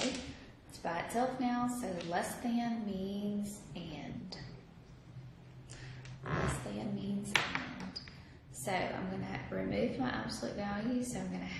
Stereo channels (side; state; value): both; identical; correlation 1.00